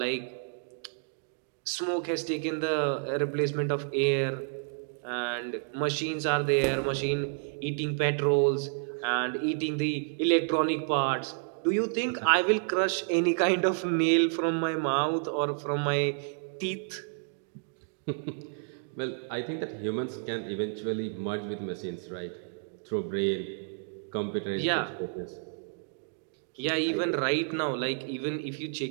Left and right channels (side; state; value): left; silent; digital silence